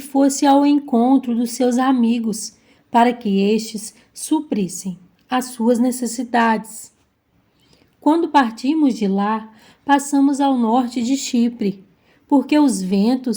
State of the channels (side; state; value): both; identical; correlation 1.00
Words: ao encontro dos seus amigos, para que estes suprissem as suas necessidades. Quando partimos de lá, passamos ao norte de Chipre, porque os